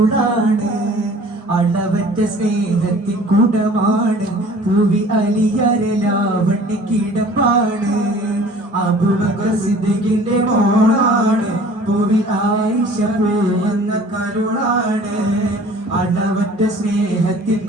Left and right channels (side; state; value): both; normal; correlation 0.48